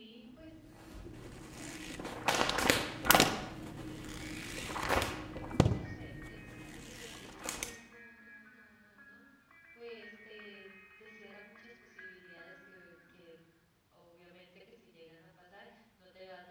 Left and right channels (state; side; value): identical; both; correlation 1.00